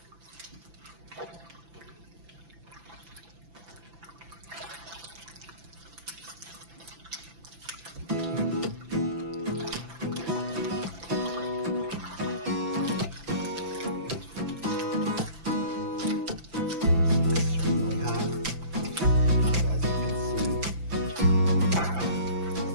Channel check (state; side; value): late; left; 5.9 ms